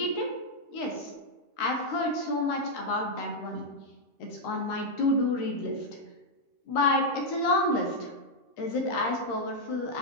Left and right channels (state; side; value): late; right; 13 ms